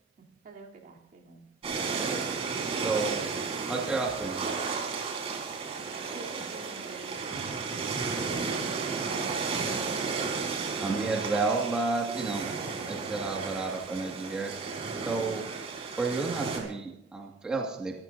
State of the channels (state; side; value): quieter; left; 3.9 dB